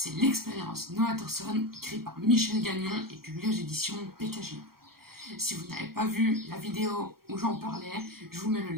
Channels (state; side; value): late; left; 0.94 ms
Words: L'expérience Noah Thorson, écrit par Michel Gagnon et publié aux éditions PKJ. Si vous n'avez pas vu la vidéo où j'en parlais, je vous mets le